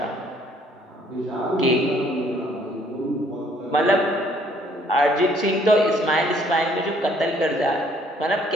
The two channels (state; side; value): normal; both; correlation 0.63